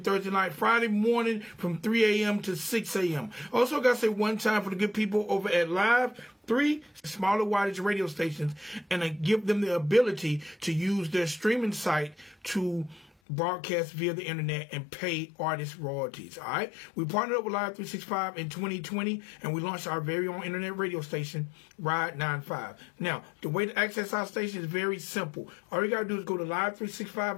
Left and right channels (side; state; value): right; drops out; at 13.1 s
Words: night, Friday morning from 3 a.m. to 6 a.m. Also got to say one time for the good people over at Live 3 smaller wattage radio stations, and give them the ability to use their streaming site to broadcast via the internet and pay artists royalties. All right, we partnered up with Live 365 in 2020, and we launched our very own internet radio station, Ride 95. Now, the way to access our station is very simple. All you gotta do is go to